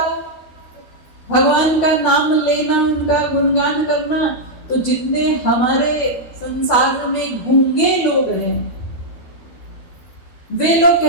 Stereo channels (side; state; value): right; late; 12 ms